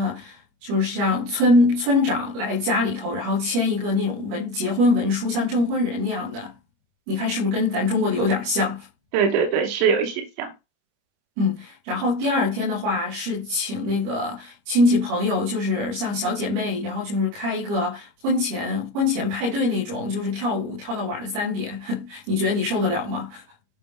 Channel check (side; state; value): left; late; 29 ms